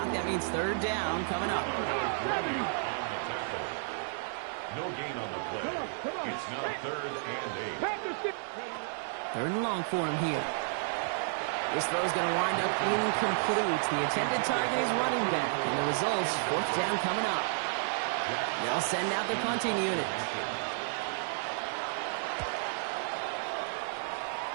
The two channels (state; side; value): silent; left; 56 dB below the other